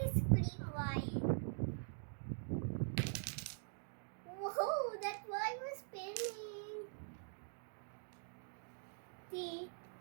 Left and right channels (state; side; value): silent; left; digital silence